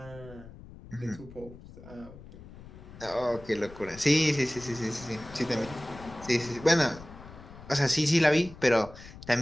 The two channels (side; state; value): left; noise; rumble, 17 dB below the sound